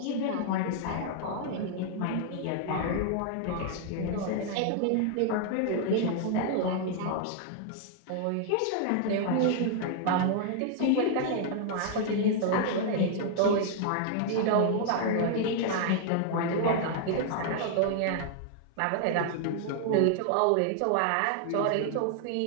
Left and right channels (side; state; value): both; different; correlation 0.00